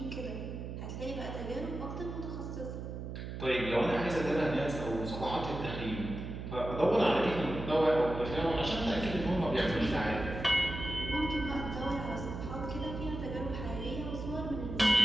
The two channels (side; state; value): right; noise; hum, 7 dB below the sound